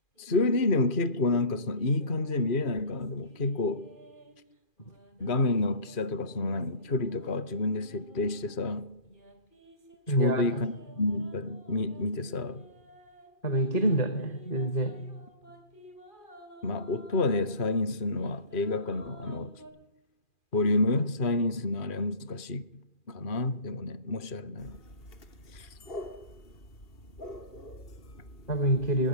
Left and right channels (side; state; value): right; late; 2.4 ms